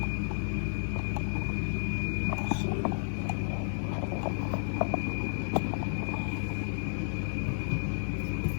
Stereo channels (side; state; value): right; silent; digital silence